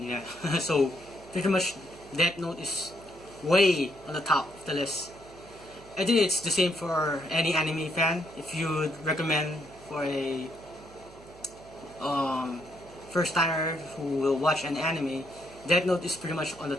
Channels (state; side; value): noise; right; hum, 21 dB below the sound